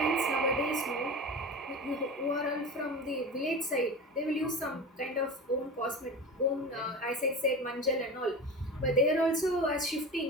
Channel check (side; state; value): both; normal; correlation 0.30